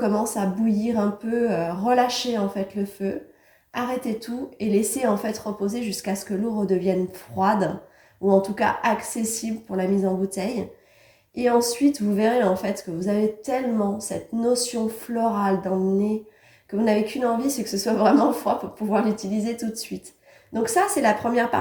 à bouillir un peu, relâchez en fait le feu, arrêtez tout et laissez en fait reposer jusqu'à ce que l'eau redevienne froide ou en tout cas accessible pour la mise en bouteille. Et ensuite, vous verrez en fait que vous avez tellement cette notion florale dans le nez que vous n'avez qu'une envie, c'est que ce soit vraiment froid pour pouvoir l'utiliser tout de suite. Donc ça, c'est la première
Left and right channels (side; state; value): both; identical; correlation 1.00